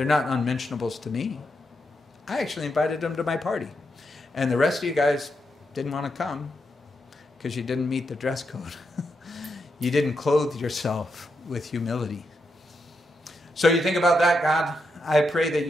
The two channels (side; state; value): both; normal; correlation 0.83